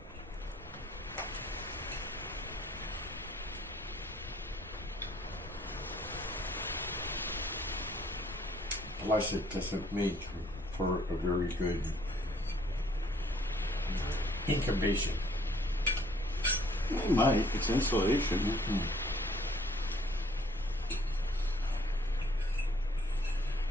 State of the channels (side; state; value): both; normal; correlation 0.62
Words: Plus, it doesn't make for a very good incubation. It might. It's insulation. Mm-hmm.